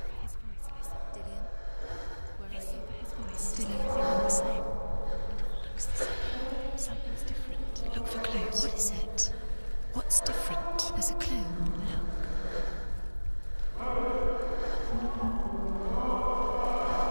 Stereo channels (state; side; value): inverted; both; correlation -1.00